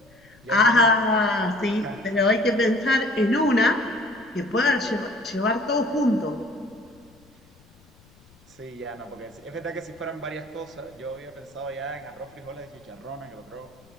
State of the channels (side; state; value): left; noise; rumble, 28 dB below the sound